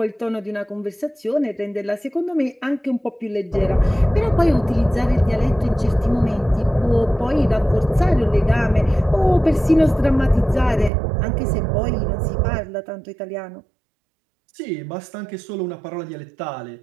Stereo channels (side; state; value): left; drops out; at 10.9 s